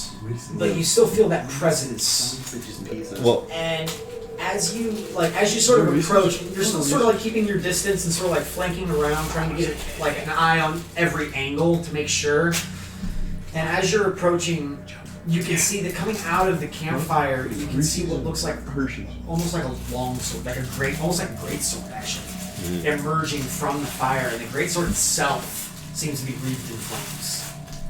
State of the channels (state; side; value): identical; both; correlation 1.00